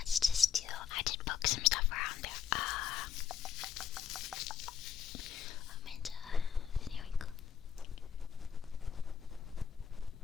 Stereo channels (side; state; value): right; quieter; 7.9 dB